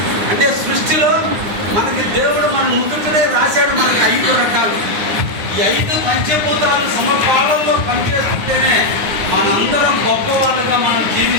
అంటే సృష్టిలో మనకి దేవుడు మన నుదుటనే రాశాడు మనకి 5 రకాలు. ఈ 5 పంచభూతాలు సమపాలనలో పనిచేస్తుంటేనే మనందరం గొప్పవాళ్ళుగా మనం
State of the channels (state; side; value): late; left; 9.7 ms